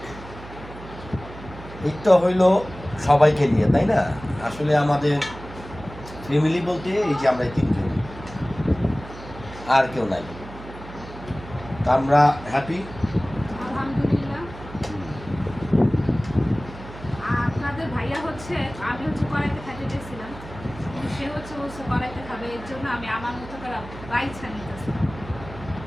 ঈদটা হইল সবাইকে নিয়ে, তাই না? আসলে আমাদের ফ্যামিলি বলতে এই যে আমরা তিনজন, আর কেউ নাই। তা আমরা হ্যাপি, আলহামদুলিল্লাহ। আপনাদের ভাইয়া হচ্ছে, আমি কড়াইতে খাইতে গেছিলাম, সে বলছে কড়াইতে খাবে, এর জন্য আমি আমার মতো করে বাইছা নিতেছিলাম।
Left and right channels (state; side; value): noise; right; hum, 15 dB below the sound